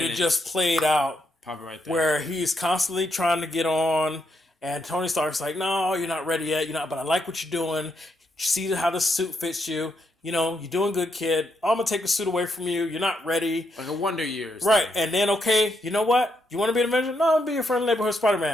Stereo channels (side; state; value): both; normal; correlation 0.79